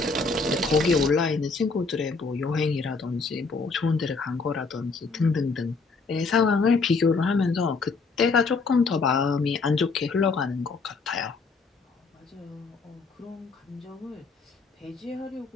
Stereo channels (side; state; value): right; quieter; 4.2 dB